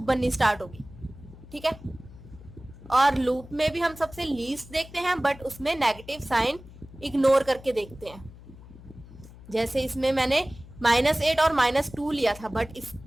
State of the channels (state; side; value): noise; left; hum, 19 dB below the sound